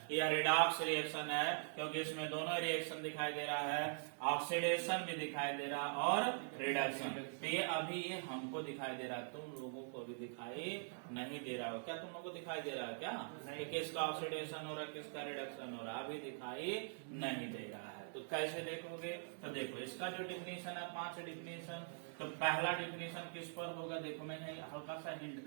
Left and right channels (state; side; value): silent; left; digital silence